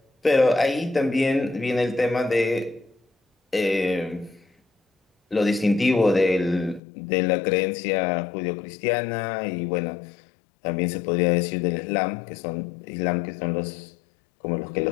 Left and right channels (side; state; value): right; drops out; at 6.8 s